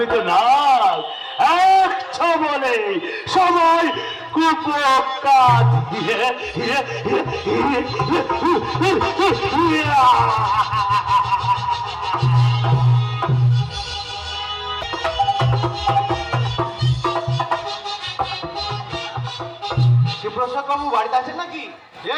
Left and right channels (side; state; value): both; identical; correlation 1.00